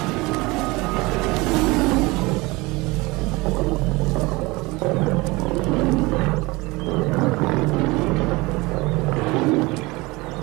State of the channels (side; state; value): left; quieter; 23.2 dB